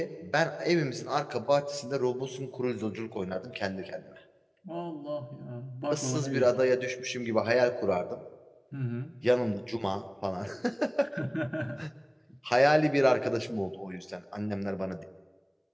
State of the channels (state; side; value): identical; both; correlation 1.00